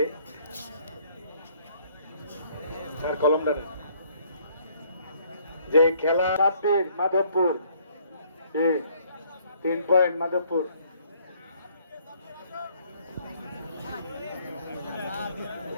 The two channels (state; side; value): inverted; both; correlation -0.63